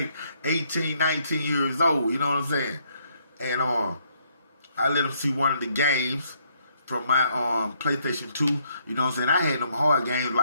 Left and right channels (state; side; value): inverted; both; correlation -0.70